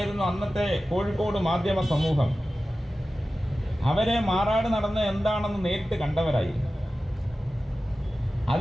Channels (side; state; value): both; normal; correlation 0.95